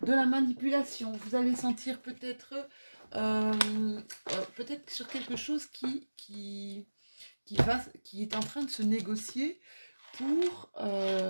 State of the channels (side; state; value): both; inverted; correlation -1.00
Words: de la manipulation. Vous allez sentir peut-être sur quelque chose qui est en train de se négocier pour